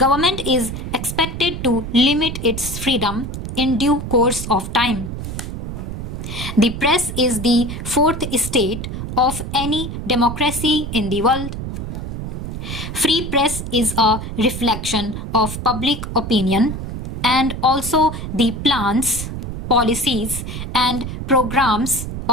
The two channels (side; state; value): right; noise; rumble, 6 dB below the sound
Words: is expected to limit its freedom in due course of time. The press is the fourth estate of any democracy in the world. Free press is a reflection of public opinion and also the plans, policies, and programs